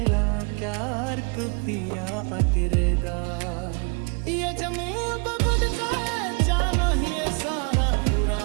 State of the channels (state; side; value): quieter; left; 34.4 dB